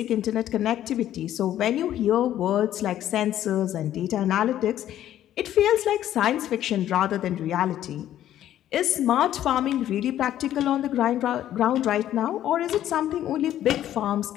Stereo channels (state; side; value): quieter; right; 12.0 dB